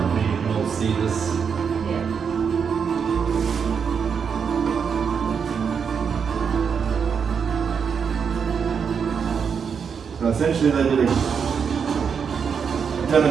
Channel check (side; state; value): left; quieter; 6.6 dB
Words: you can all see this. Yeah. So essentially they did a